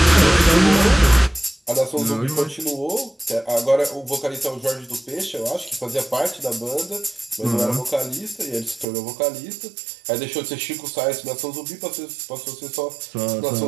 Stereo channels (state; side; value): drops out; left; at 8.8 s